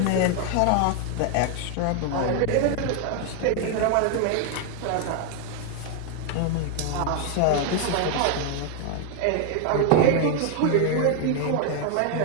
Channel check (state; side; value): different; both; correlation 0.00